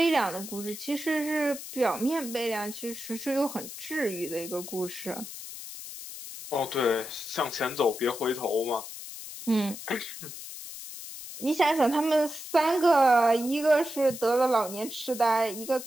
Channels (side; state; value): left; noise; hiss, 11 dB below the sound